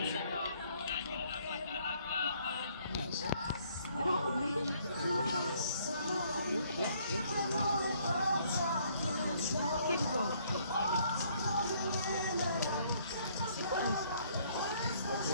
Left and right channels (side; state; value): both; inverted; correlation -0.64